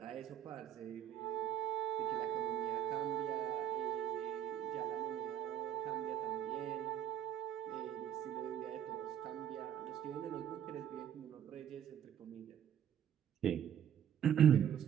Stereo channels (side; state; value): left; quieter; 9.8 dB